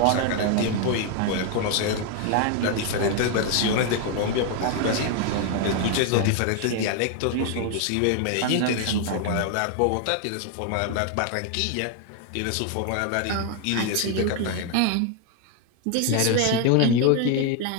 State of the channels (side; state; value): both; different; correlation 0.00